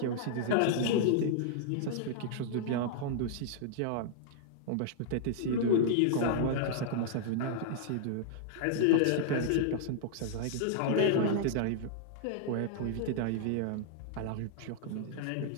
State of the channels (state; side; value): different; both; correlation -0.01